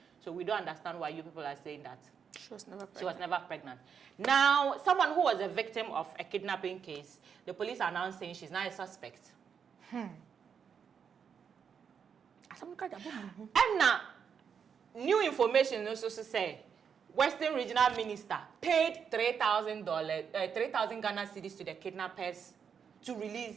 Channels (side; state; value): left; quieter; 7.0 dB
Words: So we don't understand why you people are saying that. She was never pregnant. Now, someone who was a victim of a kidnapping case, the police are now saying she's now a suspect. And now, new information also say Western Regional Minister paid $3,000, 3,000 Ghana cedis to the kidnappers to